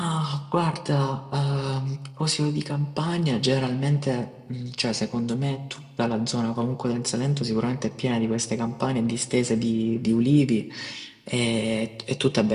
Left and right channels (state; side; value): identical; both; correlation 1.00